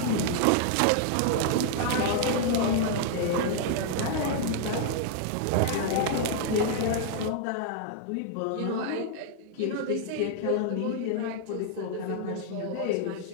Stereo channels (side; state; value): both; different; correlation 0.00